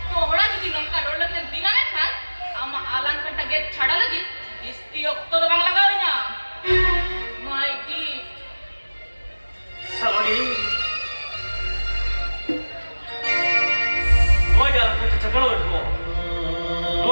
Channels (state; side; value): inverted; both; correlation -1.00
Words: तोहरा जुदी नंका रोड लगन दिना में खान आमा आलान कट्टा गेट छाड़ा लगी इस्ती ओक्तो तो बांग लगाओ ना माय गिफ्ट सलोनी नोई जा कुछ झगड़ा हो रहा